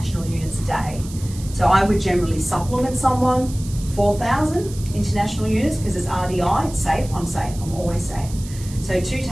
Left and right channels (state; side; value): noise; right; hiss, 17 dB below the sound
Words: units a day. So I would generally supplement someone 4,000 international units because it's RDI, it's safe, I'm always safe. So 2